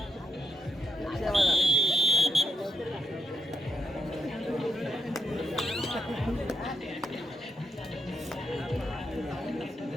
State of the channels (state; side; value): normal; both; correlation 0.80